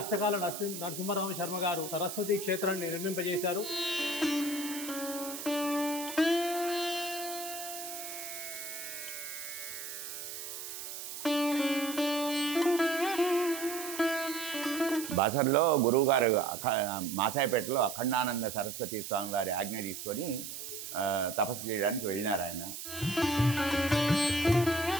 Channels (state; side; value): noise; right; hiss, 8 dB below the sound